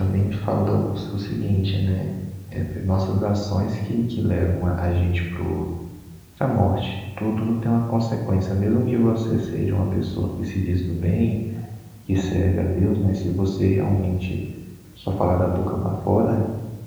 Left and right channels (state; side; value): identical; both; correlation 1.00